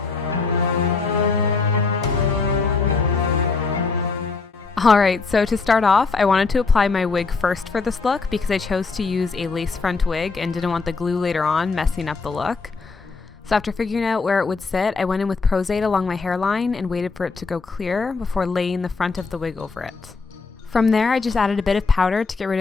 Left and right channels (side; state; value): right; quieter; 4.4 dB